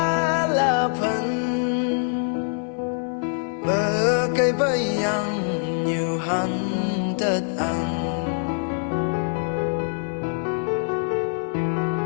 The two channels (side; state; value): right; silent; 57 dB below the other